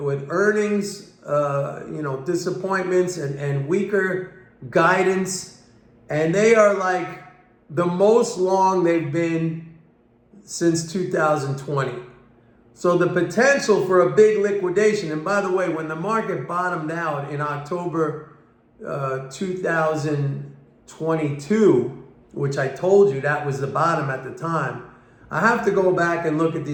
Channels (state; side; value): identical; both; correlation 1.00